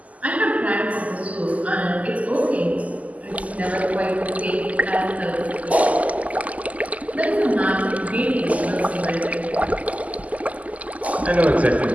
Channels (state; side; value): late; left; 0.073 ms